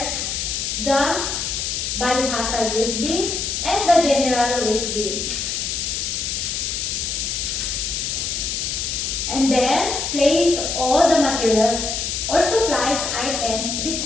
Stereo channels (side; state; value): left; noise; hiss, 2 dB below the sound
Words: the biohazard waste bin and the general waste bins. And then, place all the materials or supplies items